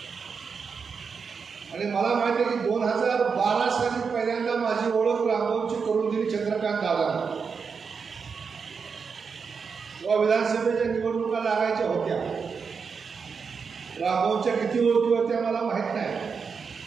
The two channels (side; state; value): left; quieter; 5.7 dB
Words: आणि मला माहिती आहे की 2012 साली पहिल्यांदा माझी ओळख रामभाऊची करून दिली चंद्रकांत दादा. तेव्हा विधानसभेच्या निवडणुका लागायच्या होत्या. रामभाऊच्या किती ओळखी होत्या मला माहीत नाही.